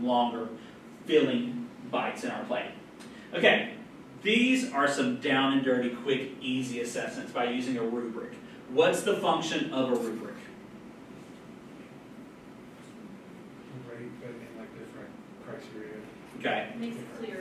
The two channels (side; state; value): both; identical; correlation 1.00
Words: longer, filling bites in our plate. Okay. These are some down and dirty, quick, easy assessments by using a rubric. What's the function of a rubric?